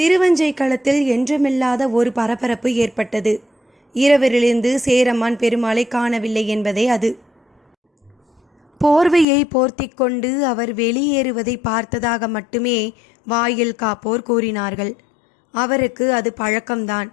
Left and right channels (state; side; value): drops out; right; at 9.2 s